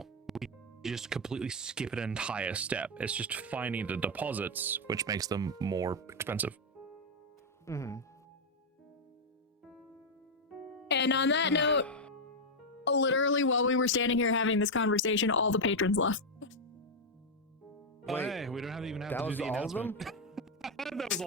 We just completely skip an entire step. It's just finding the deposits, which makes them more expensive. And on that note, literally while we were standing here having this conversation, all the patrons left. Oh, hey, we don't have to even have that to was do the all of them? announcement. That was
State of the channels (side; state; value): both; normal; correlation 0.00